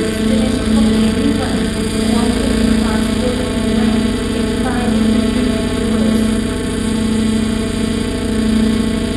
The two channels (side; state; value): both; identical; correlation 1.00